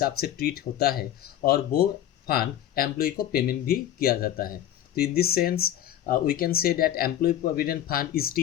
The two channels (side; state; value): right; quieter; 11.6 dB